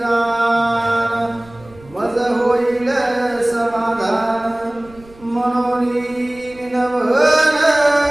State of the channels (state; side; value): noise; right; rumble, 24 dB below the sound